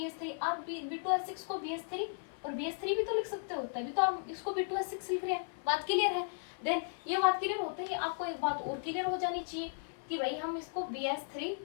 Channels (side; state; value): right; silent; 54 dB below the other